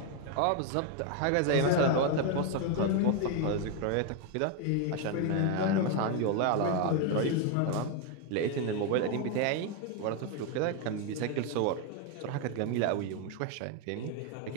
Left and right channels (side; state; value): both; different; correlation 0.01